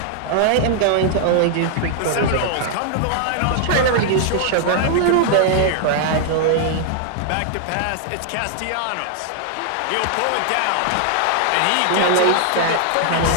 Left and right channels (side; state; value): both; different; correlation 0.00